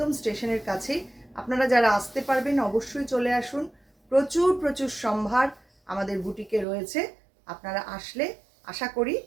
স্টেশনের কাছেই। আপনারা যারা আসতে পারবেন অবশ্যই চলে আসুন। প্রচুর প্রচুর সম্ভার আমাদের বুটিকে রয়েছে। আপনারা আসলে আশা করি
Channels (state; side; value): drops out; left; at 6.7 s